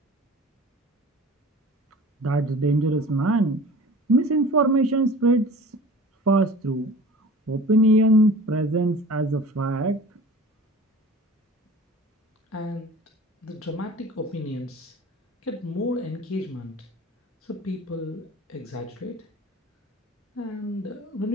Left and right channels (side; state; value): both; normal; correlation 0.41